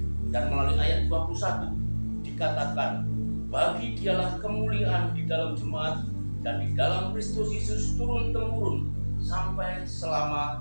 Dan melalui ayat 21 dikatakan, bagi dialah kemuliaan di dalam jemaat dan di dalam Kristus Yesus turun-temurun sampai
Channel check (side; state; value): both; inverted; correlation -1.00